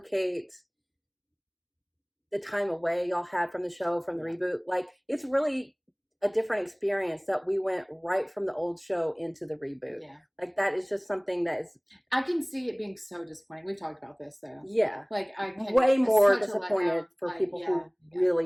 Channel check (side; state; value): both; identical; correlation 1.00